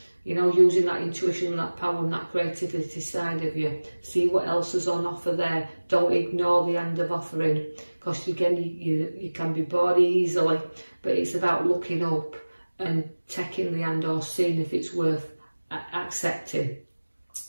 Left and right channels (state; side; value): inverted; both; correlation -1.00